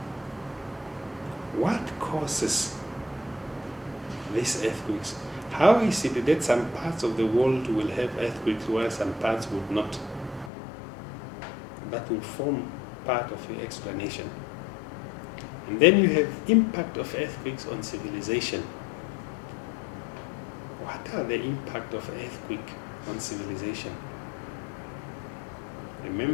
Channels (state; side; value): drops out; right; at 10.5 s